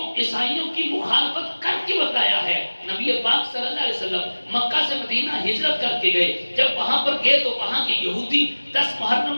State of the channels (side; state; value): both; inverted; correlation -1.00